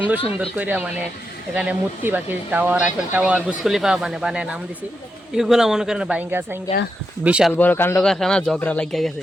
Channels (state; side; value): normal; both; correlation 0.85